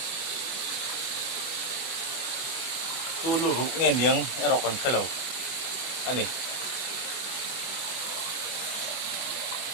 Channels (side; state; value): right; late; 24 ms